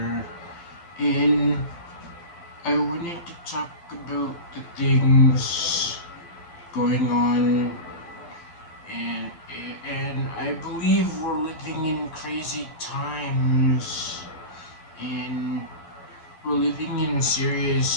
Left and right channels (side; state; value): right; late; 12 ms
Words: and I wanted to talk about the things going on and I believe we're living in crazy times and we're living in